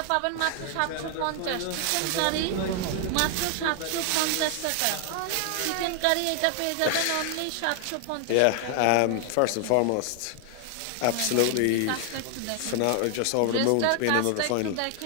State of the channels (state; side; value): different; both; correlation 0.00